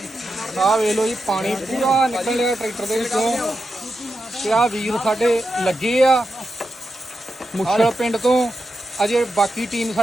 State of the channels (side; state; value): both; normal; correlation 0.88